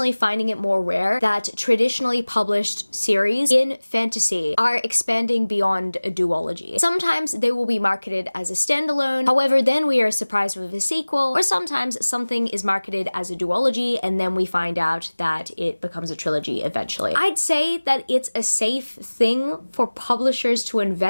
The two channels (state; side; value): inverted; both; correlation -1.00